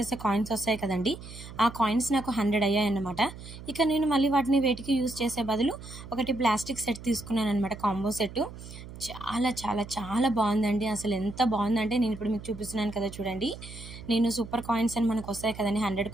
కాయిన్స్ వస్తాయి కదండి, ఆ కాయిన్స్ నాకు 100 అయ్యాయన్నమాట. ఇక నేను మళ్ళీ వాటిని వేటికి యూజ్ చేసే బదులు ఒకటి ప్లాస్టిక్ సెట్ తీసుకున్నాను అనమాట, కాంబో సెట్. చాలా బాగుందండి. అసలు ఎంత బాగుందంటే, నేను ఇప్పుడు మీకు చూపిస్తున్నాను కదా చూడండి. నేను సూపర్ కాయిన్స్ అని మనకు వస్తాయి కదండి, 100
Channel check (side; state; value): right; noise; hum, 14 dB below the sound